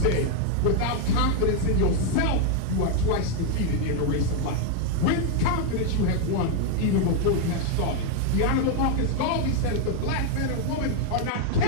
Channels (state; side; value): different; both; correlation 0.01